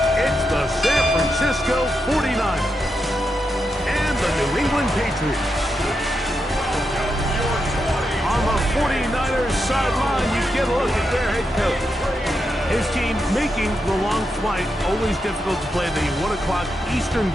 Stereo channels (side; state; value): both; normal; correlation 0.85